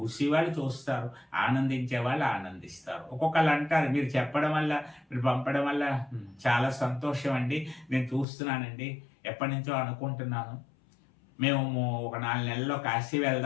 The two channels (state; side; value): drops out; right; at 8.2 s